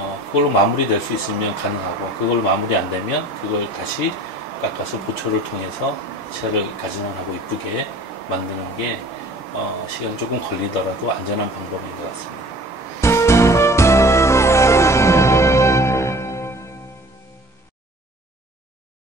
그걸로 마무리될 수 있으면 가능하고, 그걸로 마무리 안 되면 그걸 다시 깎아서 보철을 통해서 치아를 가진원하고 이쁘게 만드는 게 시간이 조금 걸리더라도 안전한 방법인 것 같습니다.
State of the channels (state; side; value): normal; both; correlation 0.48